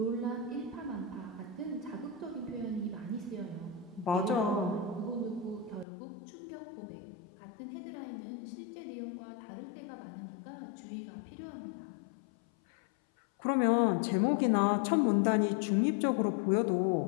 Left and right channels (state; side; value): drops out; right; at 5.9 s